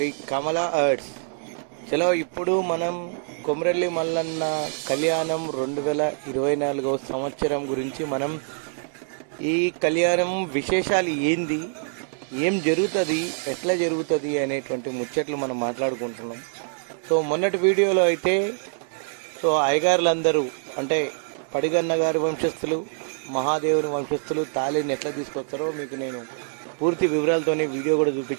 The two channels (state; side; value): silent; left; digital silence